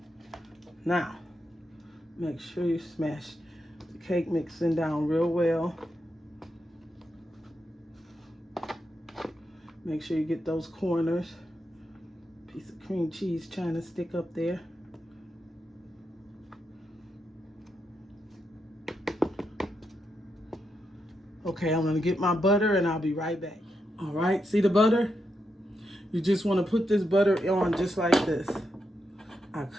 Now, make sure you smash the cake mixing down real well. Make sure you get those corners. Piece of cream cheese trying to stick up there. Okay, I'm gonna get my butter and I'll be right back. All right, see the butter? You just want to put this butter on just like this. I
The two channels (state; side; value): normal; both; correlation 0.84